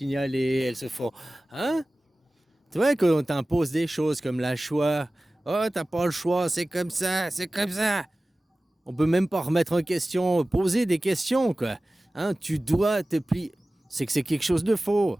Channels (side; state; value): both; normal; correlation 0.97